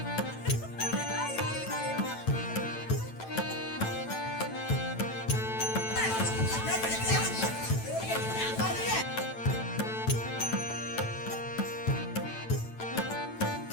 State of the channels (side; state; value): right; late; 9.0 ms